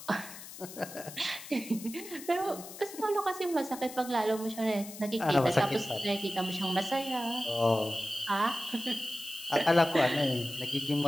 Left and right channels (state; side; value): noise; left; hiss, 14 dB below the sound